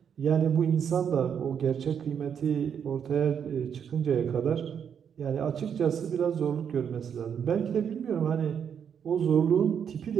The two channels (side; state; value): left; quieter; 7.8 dB